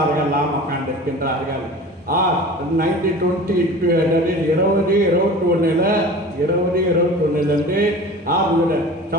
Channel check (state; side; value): normal; both; correlation 0.39